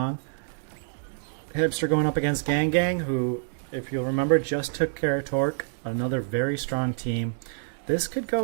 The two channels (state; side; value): silent; left; digital silence